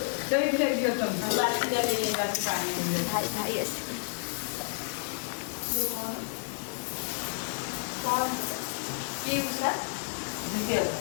ଭାଇ ଭାଇ ଆସିବେ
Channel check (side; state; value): right; silent; 58 dB below the other